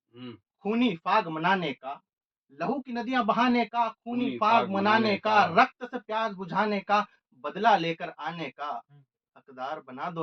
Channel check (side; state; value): both; identical; correlation 1.00